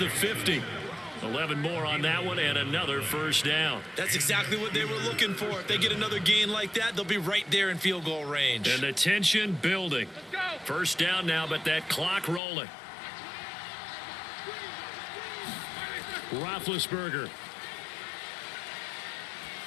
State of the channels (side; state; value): right; drops out; at 12.4 s